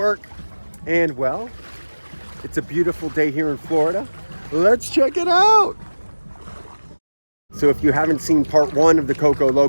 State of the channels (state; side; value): inverted; both; correlation -1.00